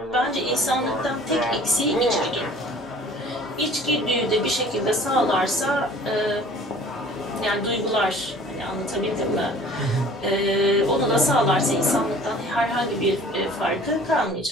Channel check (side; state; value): both; normal; correlation 0.49